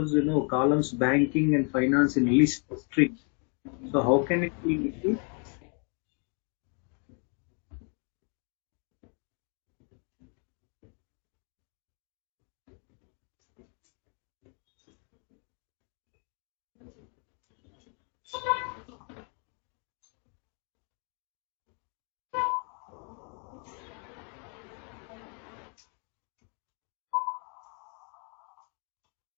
columns banking and finance in list string. So how can it be issued?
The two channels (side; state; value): right; quieter; 39.6 dB